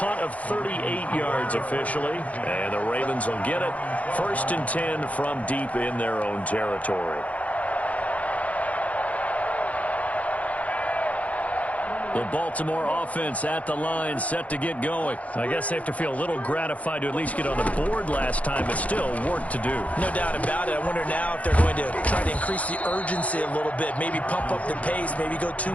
of 38 yards officially, and the Ravens will get it. 1st and 10 from deep in their own territory. The Baltimore offense at the line, set to get going. I guess they have to feel a little gratified to at least get on the board last time, but still work to do. No doubt about it. I wonder now if they're going to try to increase the urgency a little bit, maybe pump up the pace, maybe go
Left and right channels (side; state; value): right; late; 0.067 ms